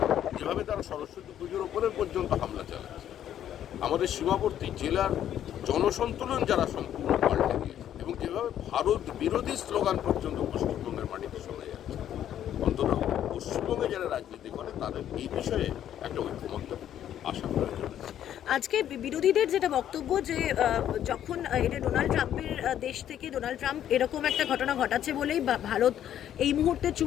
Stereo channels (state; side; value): quieter; right; 10.7 dB